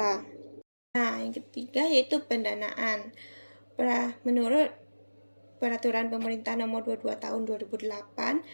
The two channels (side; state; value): both; inverted; correlation -1.00